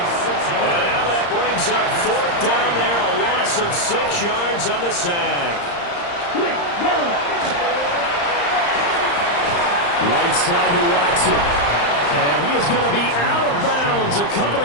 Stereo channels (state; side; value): late; right; 35 ms